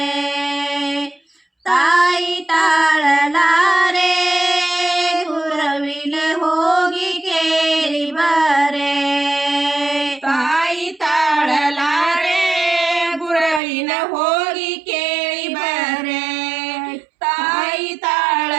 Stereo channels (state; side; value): drops out; left; at 13.6 s